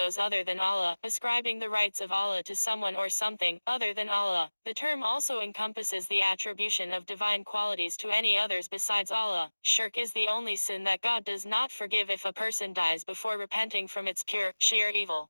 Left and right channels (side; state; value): both; inverted; correlation -1.00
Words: other than Allah, ascribing the rights of Allah to someone or something other than Allah. The term also encompasses the attribution of divine qualities to any others besides Allah. Shirk is the only sin that God does not forgive if a person dies before repenting from its pure, sheer